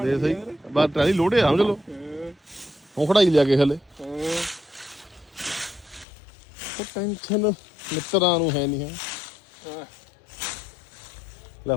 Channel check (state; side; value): drops out; right; at 6.1 s